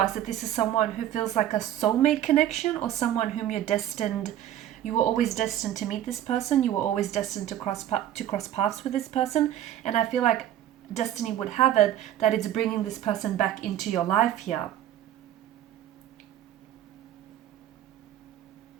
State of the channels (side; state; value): left; quieter; 11.9 dB